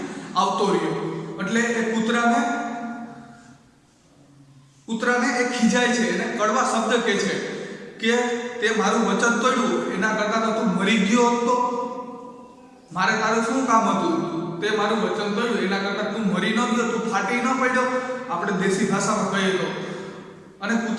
આવતો રહ્યો, એટલે એ કૂતરાને એ ખીજાય છે, એને કડવા શબ્દ કહે છે કે તે મારું વચન તોડ્યું, એના કરતાં તો તું મરી ગયો હતો, મારે તારું શું કામ હતું, તે મારું વચન તોડ્યું, એના કરતાં તું મરી ન ગયો, તું ફાટી ન પડ્યો, આપણે દેશી ભાષામાં કહીએ તો. અને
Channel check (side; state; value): both; identical; correlation 1.00